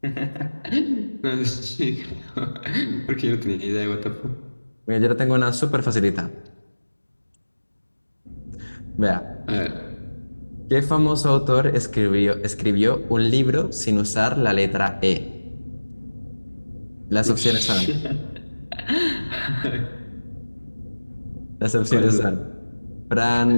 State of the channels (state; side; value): inverted; both; correlation -1.00